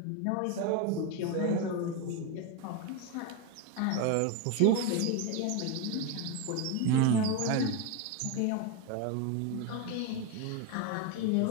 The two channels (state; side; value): different; both; correlation 0.03